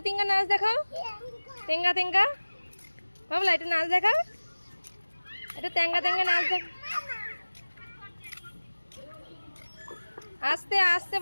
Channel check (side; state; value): both; inverted; correlation -1.00